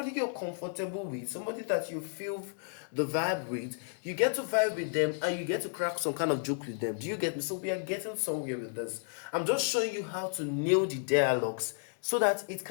you're comfortable with, somebody that you feel the vibe with, you get to vibe with them and you get to crack some kind of joke with them. Do you get me? So we are getting somewhere with this. I'm just showing you how to nail the dialogues so that it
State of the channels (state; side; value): silent; right; digital silence